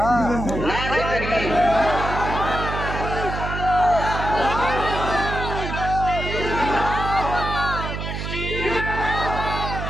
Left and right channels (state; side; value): noise; right; hum, 5 dB below the sound